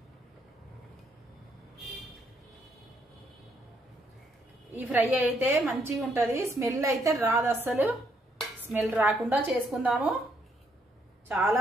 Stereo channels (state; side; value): normal; both; correlation 0.73